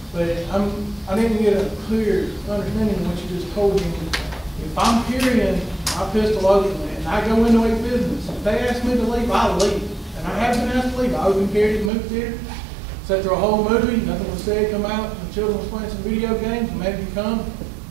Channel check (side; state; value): left; drops out; at 11.9 s